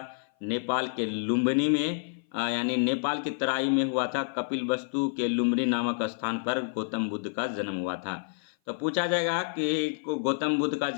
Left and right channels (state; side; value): silent; right; 55 dB below the other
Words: नेपाल के लुम्बिनी में, यानी नेपाल की तराई में हुआ था। कपिलवस्तु के लुम्बिनी नामक स्थान पर गौतम बुद्ध का जन्म हुआ था। तो पूछा जाएगा कि गौतम बुद्ध का